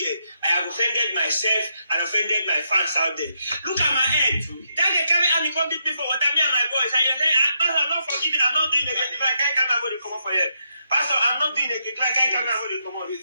I have offended myself and offended my fans out there. Look at my head. That girl carry and come beat me for what me and my boys. And you're saying, Pastor, I'm not forgiving. I'm not doing it. If I can't come out, I'm going to come up for you. Pastor, I'm not doing it. If I can't come out, I'm going to come out.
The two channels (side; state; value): both; inverted; correlation -0.79